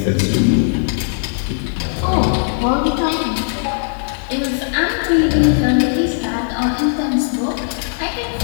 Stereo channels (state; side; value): silent; right; digital silence